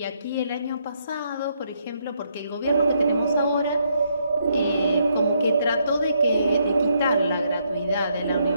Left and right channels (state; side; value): inverted; both; correlation -0.74